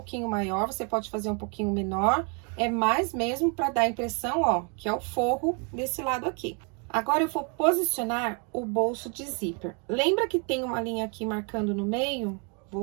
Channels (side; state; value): left; quieter; 36.7 dB